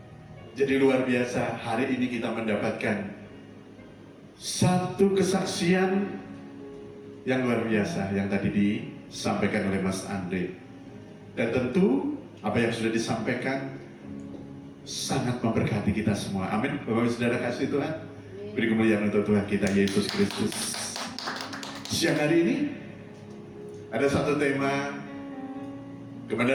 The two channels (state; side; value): identical; both; correlation 1.00